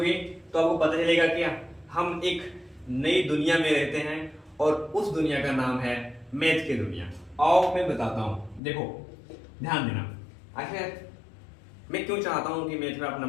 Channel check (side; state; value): right; drops out; at 8.6 s